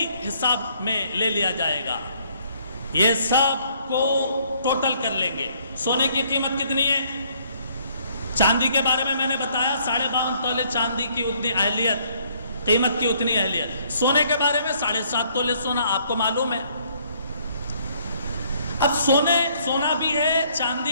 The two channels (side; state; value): both; inverted; correlation -0.65